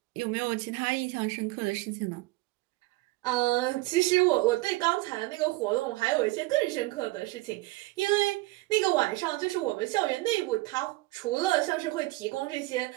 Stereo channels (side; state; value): left; quieter; 20.7 dB